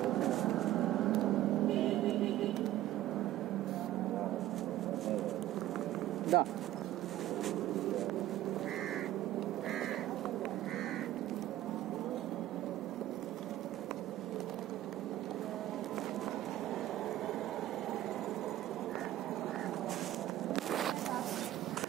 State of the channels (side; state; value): left; quieter; 14.2 dB